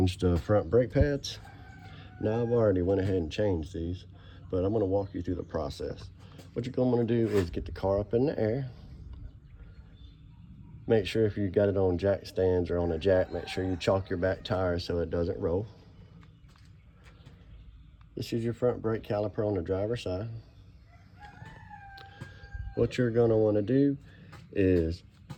the front brake pads. Now I've already went ahead and changed these, but I'm going to walk you through the process. What you're going to want to do is get the car up in the air. Make sure if you got it on jack stands or on a jack, make sure you chalk your back tire so it doesn't roll. This is your front brake caliper on the driver's side. What you're going to want to do is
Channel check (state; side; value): identical; both; correlation 1.00